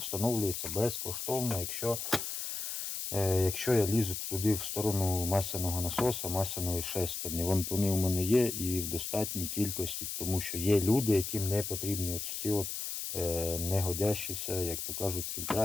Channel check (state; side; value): noise; left; hiss, 4 dB below the sound